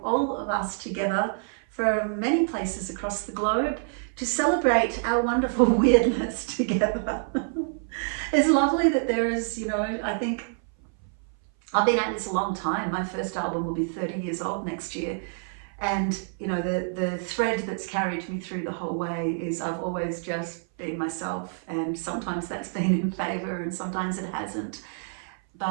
all of us together from many places across the globe to celebrate our wonderful weirdness together. It's lovely that there is, you know, I think I've been at this a long time. My first album will be 30 years old next year. And, you know, the thread that's carried me through the whole way is I've always just been myself, and sometimes that's been in favour and sometimes it hasn't.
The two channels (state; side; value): silent; left; 58 dB below the other